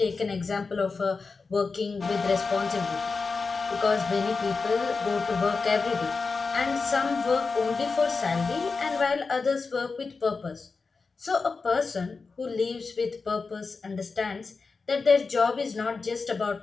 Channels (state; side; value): quieter; right; 4.4 dB